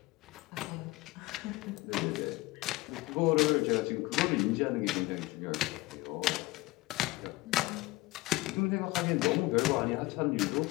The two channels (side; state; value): right; quieter; 20.5 dB